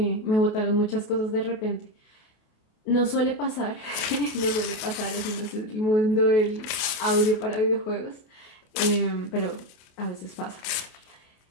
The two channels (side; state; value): right; late; 29 ms